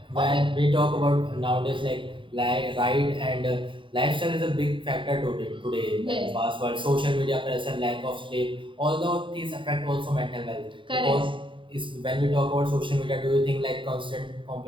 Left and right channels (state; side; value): late; left; 0.24 ms